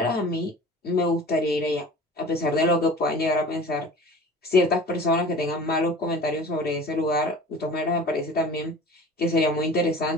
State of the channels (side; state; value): both; normal; correlation 0.41